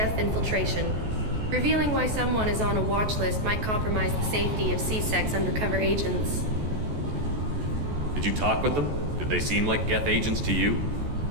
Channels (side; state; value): left; late; 14 ms